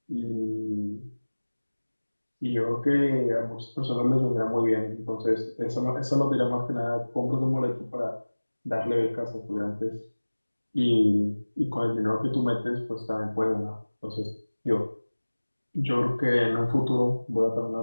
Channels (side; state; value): both; inverted; correlation -1.00